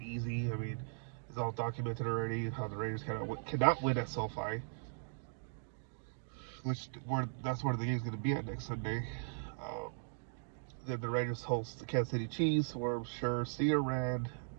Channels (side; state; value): left; silent; digital silence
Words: I mean, it's all documented already how the Raiders cannot win at SoFi, that's where the game's going to be at next Sunday. Um, then the Raiders host the Kansas City Chiefs, where I'm sure Cedar Rand,